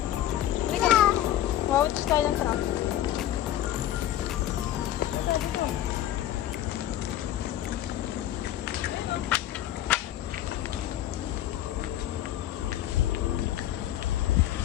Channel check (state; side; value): quieter; right; 12.5 dB